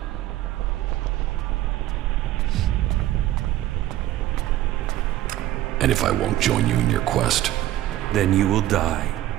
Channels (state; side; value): quieter; left; 14.2 dB